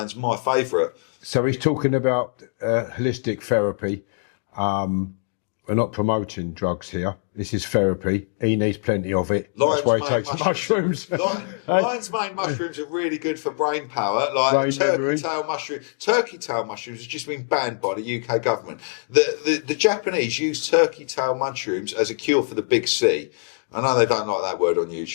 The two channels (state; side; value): silent; right; 63 dB below the other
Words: my favourite. so he's talking about holistic therapy. We're not promoting drugs here. This is therapy. He needs plenty of it. That's why he takes mushrooms. Lion's mane mushrooms are really good for brain power. Like Brain turkey memory. tail mushroom. Turkey tail mushrooms have just been banned by the UK government. The Japanese use turkey tail mushrooms as a cure for the big C. I know they don't like that word on